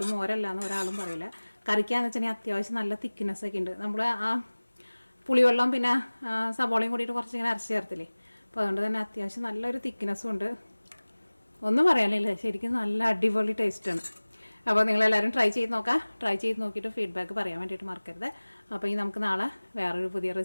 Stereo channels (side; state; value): both; inverted; correlation -1.00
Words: മോരല്ലാന്ന് ഒരാളും പറയില്ല. കറിക്കാന്ന് വെച്ചിട്ടുണ്ടെങ്കിൽ അത്യാവശ്യം നല്ല തിക്നെസ്സൊക്കെ ഉണ്ട്. നമ്മൾ ആ പുളിവെള്ളം പിന്നെ സബോളയും കൂടിയിട്ട് കുറച്ചിങ്ങനെ അരച്ച് ചേർത്തില്ലേ. അപ്പോൾ അതുകൊണ്ട് തന്നെ അത്യാവശ്യം നല്ലൊരു തിക്നെസ്സും ഉണ്ട്. ഒന്നും പറയാനില്ല, ശരിക്കും നല്ല അടിപൊളി ടേസ്റ്റാണ്. അപ്പോൾ നിങ്ങളെല്ലാവരും ട്രൈ ചെയ്ത് നോക്കാം. ട്രൈ ചെയ്ത് നോക്കിയിട്ട് ഫീഡ്ബാക്ക് പറയാൻ വേണ്ടിയിട്ട് മറക്കരുത്. അപ്പോൾ ഈ നമുക്ക് നാളെ വേറൊരു പുതിയ